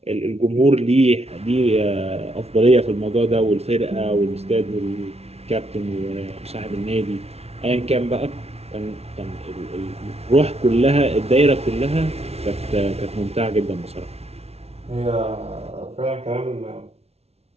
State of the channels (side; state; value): left; late; 0.30 ms